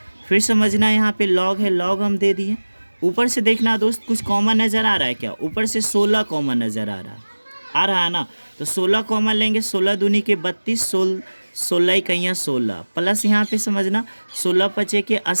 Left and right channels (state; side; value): inverted; both; correlation -1.00